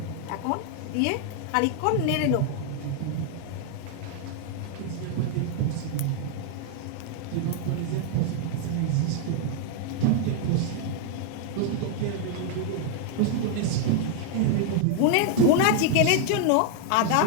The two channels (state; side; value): different; both; correlation 0.00